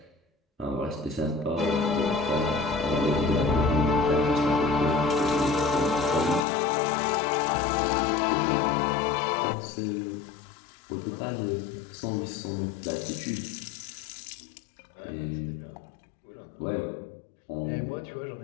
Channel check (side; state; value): right; drops out; at 6.5 s